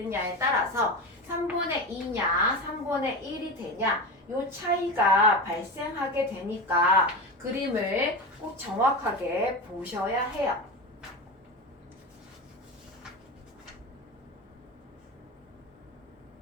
따라서 3분의 2냐 3분의 1이 되냐 요 차이가 발생하게 되니까 그림을 꼭 정확하게 보셔야 해요.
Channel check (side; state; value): both; normal; correlation 0.23